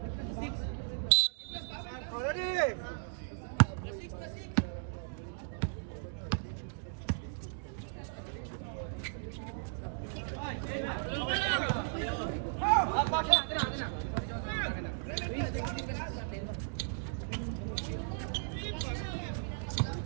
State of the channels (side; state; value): left; silent; digital silence